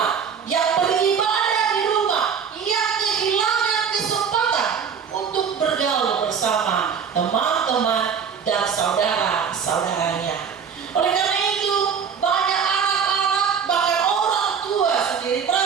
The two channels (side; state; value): left; quieter; 6.9 dB